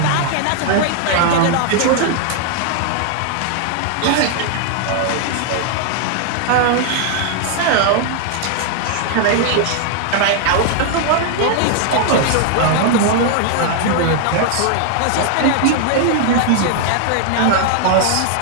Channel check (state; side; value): different; both; correlation 0.00